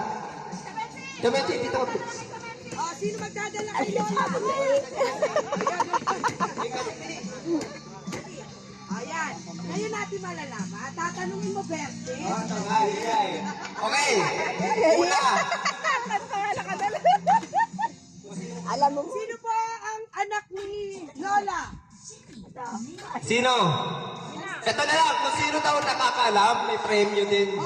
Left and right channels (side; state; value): both; identical; correlation 1.00